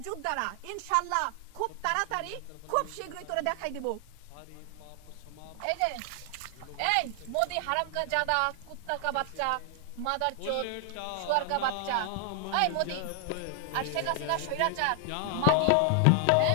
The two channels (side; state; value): both; different; correlation 0.00